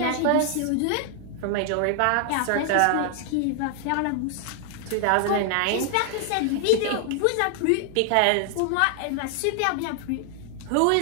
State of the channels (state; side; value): different; both; correlation 0.00